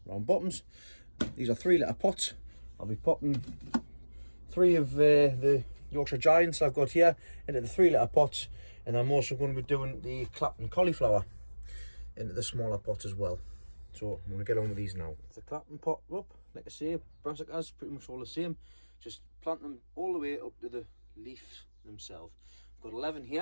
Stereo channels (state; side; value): inverted; both; correlation -1.00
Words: round bottoms. These are 3 litre pots. I'll be potting 3 of the Yorkshire Giants I've got here into the 3 litre pots, and I'm also going to be doing the Clapton cauliflower into the smaller pots as well. So I'm going to get on with these now. The Clapton pot up, like I say, brassicas, pretty much all the same. Just plant them all the way up to the leaves themselves. I've got 11